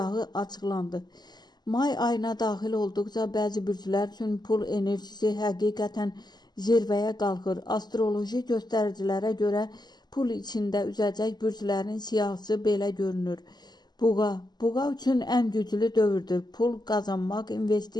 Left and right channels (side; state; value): right; late; 0.20 ms